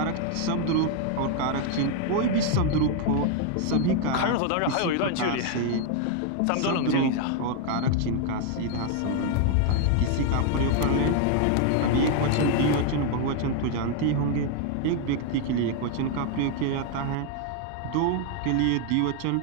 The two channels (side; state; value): both; different; correlation 0.01